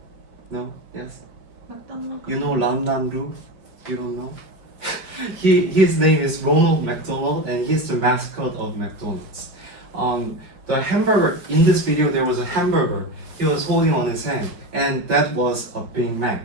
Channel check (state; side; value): late; left; 5.3 ms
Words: No? Yes? You know Lan Lan Lu? You don't know? His name is Ronald McDonald, and he's the mascot of McDonald's. The hamburger, in this video there was a hamburger he was holding on his hand, and that was a Big Mac.